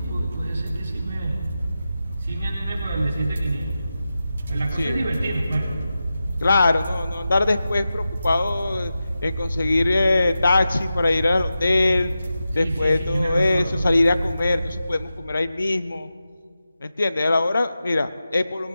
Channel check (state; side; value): inverted; both; correlation -0.91